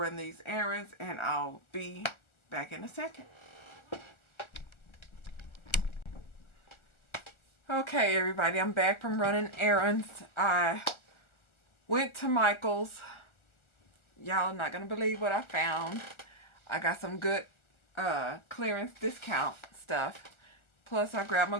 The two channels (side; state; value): right; late; 1.4 ms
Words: these errands, and I'll be back in a second. Okay, everybody, I'm back from running errands. I went to Michael's. Y'all not going to believe what I found. I got some good clearance discount stuff. Plus, I grabbed my